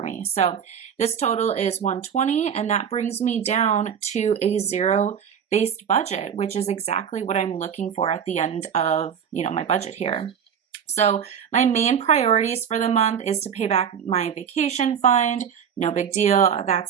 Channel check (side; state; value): left; quieter; 7.8 dB